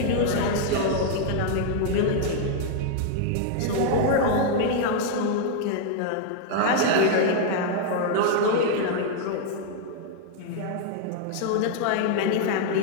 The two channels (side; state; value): both; different; correlation 0.00